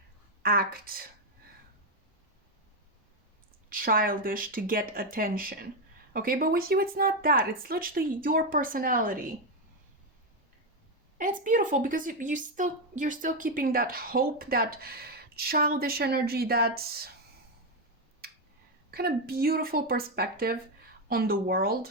act childish to get attention. Okay, but with you it's not that. It's literally your personality. And it's beautiful because you're still keeping that hope, that childish energy, that kind of beautiful perspective on the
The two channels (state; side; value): normal; both; correlation 0.06